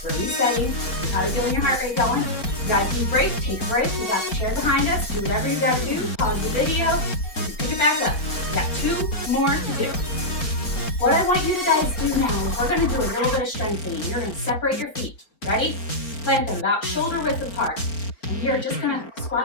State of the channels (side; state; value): right; late; 4.4 ms